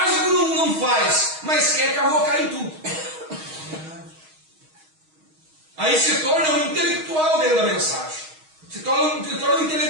não faz, mas quer cavocar em tudo. Aí se torna um intelectual dentro da mensagem. Se torna um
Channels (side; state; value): left; late; 6.4 ms